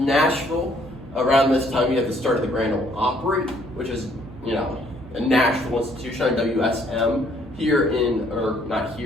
Nashville, around this time you have the start of the Grand Ole Opry, which is, a national institution on WSM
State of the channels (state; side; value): noise; right; hum, 18 dB below the sound